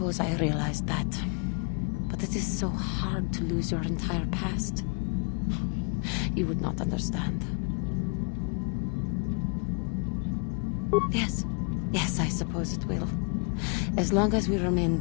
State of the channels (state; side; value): quieter; right; 35.5 dB